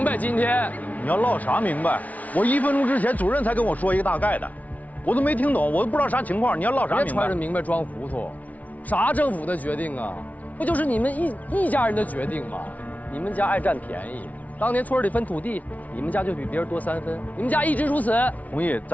白。今天你要唠啥明白？我1分钟之前主任才跟我说一个大概的，我都没听懂，我都不知道啥情况。你要唠啥明白？别揣着明白装糊涂，啥政府的决定啊？不就是你们一家人的决定吗？你们家爱占便宜，当年村里分土地，你们家就比别人多3分，你们家一直如此。弘毅，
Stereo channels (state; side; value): late; right; 0.071 ms